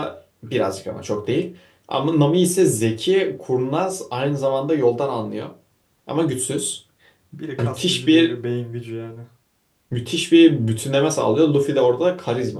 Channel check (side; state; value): both; identical; correlation 1.00